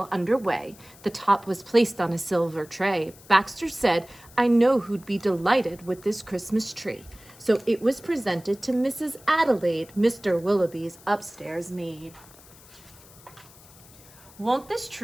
underway, the top was placed on a silver tray. Baxter said, "I know who'd be delighted with this Christmas tree." So it was presented to Mrs. Adelaide, Mr. Willowby's upstairs maid. "Won't this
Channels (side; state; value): left; noise; hiss, 23 dB below the sound